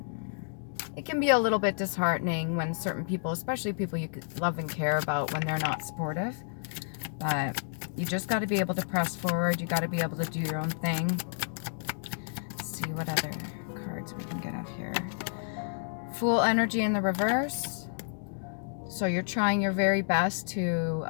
It can be a little bit disheartening when certain people, especially people you love and care about, when they're not supportive. But you just got to be able to press forward. You got to be able to do your own thing. Let's see what other cards we can get out here. Fool energy in the reverse. So you're trying your very best to,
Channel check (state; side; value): silent; right; digital silence